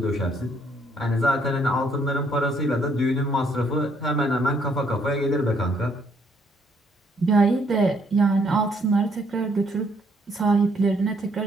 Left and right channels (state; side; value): normal; both; correlation 0.68